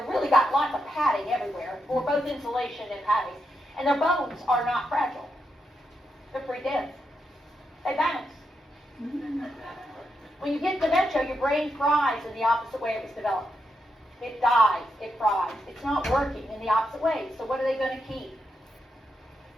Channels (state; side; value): normal; both; correlation 0.84